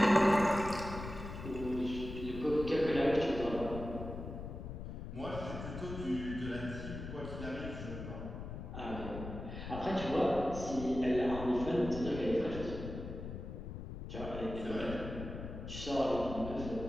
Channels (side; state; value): left; noise; rumble, 8 dB below the sound